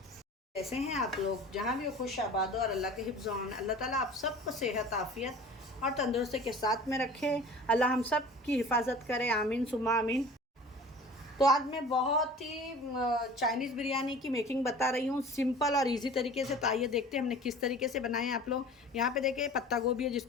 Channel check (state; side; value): normal; both; correlation 0.42